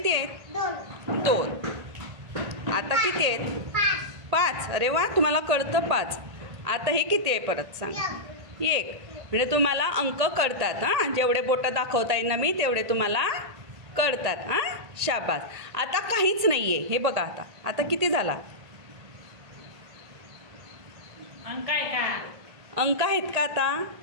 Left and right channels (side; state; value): left; late; 1.8 ms